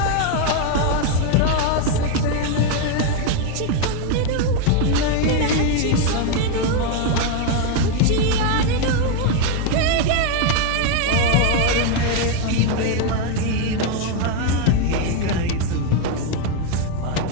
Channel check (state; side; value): different; both; correlation 0.01